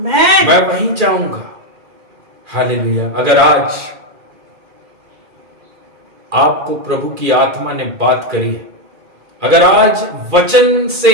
मैं वहीं जाऊंगा। हालेलुया। अगर आज आपको प्रभु की आत्मा ने बात करी है, अगर आज वचन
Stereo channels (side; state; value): left; late; 2.4 ms